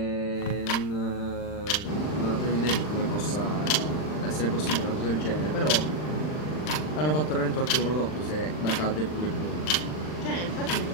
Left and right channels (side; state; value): right; late; 39 ms